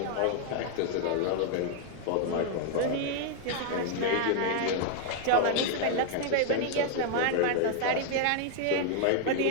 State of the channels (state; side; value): different; both; correlation 0.00